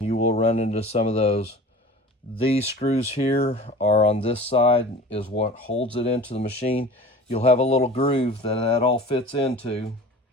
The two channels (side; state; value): both; normal; correlation 0.40